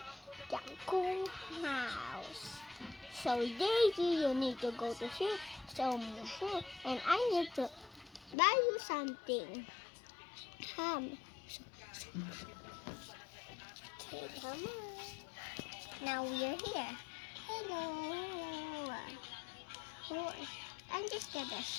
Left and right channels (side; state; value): right; drops out; at 8.3 s